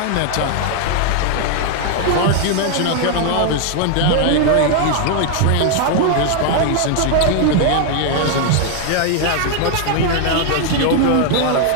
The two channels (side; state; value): both; different; correlation 0.00